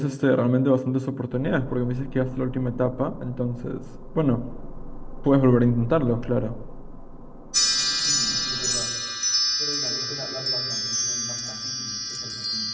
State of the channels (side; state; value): both; identical; correlation 1.00